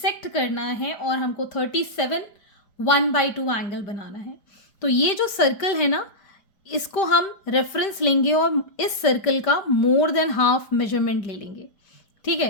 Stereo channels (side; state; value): right; late; 5.1 ms